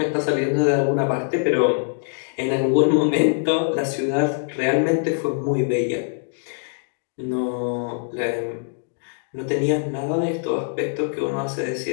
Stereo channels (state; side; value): silent; right; digital silence